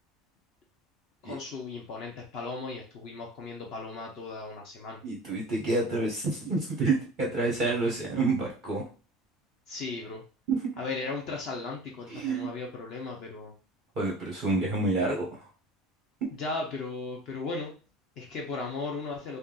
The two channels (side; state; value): both; normal; correlation 0.40